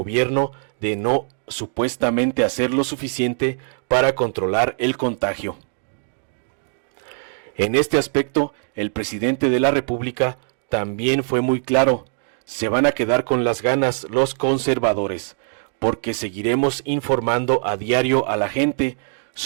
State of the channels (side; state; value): left; silent; digital silence